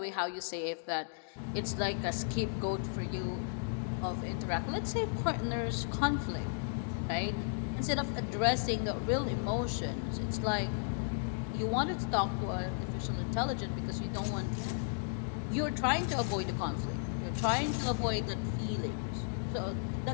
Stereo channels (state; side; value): silent; right; digital silence